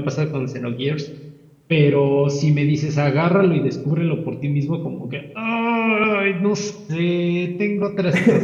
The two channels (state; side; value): identical; both; correlation 1.00